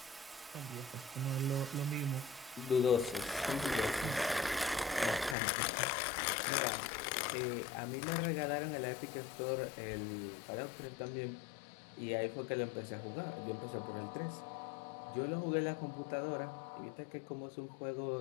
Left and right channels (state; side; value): drops out; right; at 5.4 s